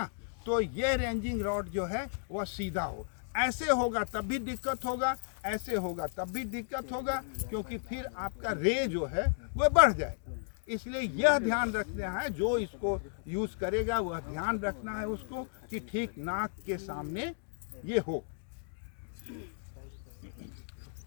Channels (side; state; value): right; silent; digital silence